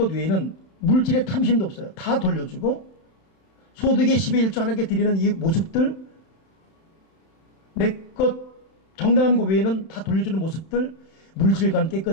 외에는 물질의 탐심도 없어요. 다 돌려주고 소득의 10의 1조 하나님께 드리는 이 모습들 내 것 정당한 것 외에는 다 돌려주는 모습들 물질관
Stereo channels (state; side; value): late; right; 31 ms